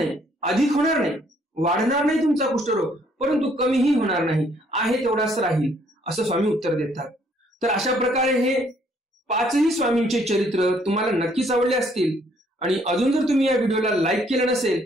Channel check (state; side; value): normal; both; correlation 0.65